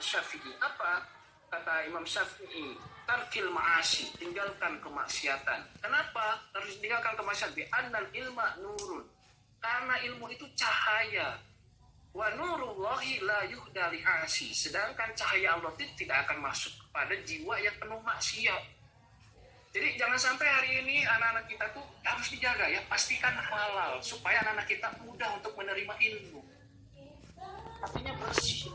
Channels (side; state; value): both; identical; correlation 1.00